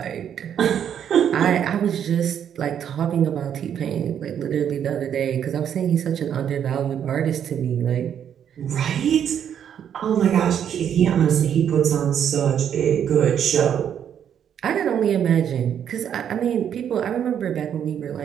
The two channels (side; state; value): left; quieter; 9.0 dB